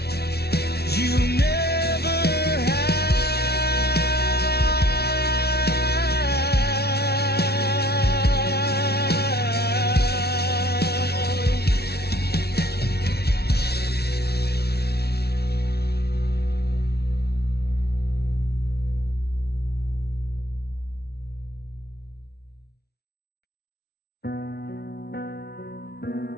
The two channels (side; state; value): right; late; 0.47 ms